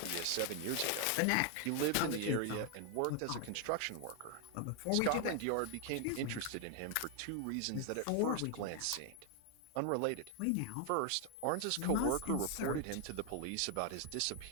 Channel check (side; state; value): both; different; correlation 0.00